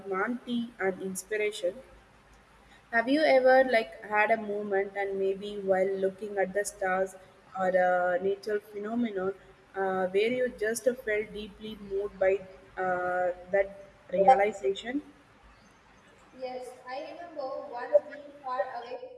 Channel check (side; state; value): both; identical; correlation 1.00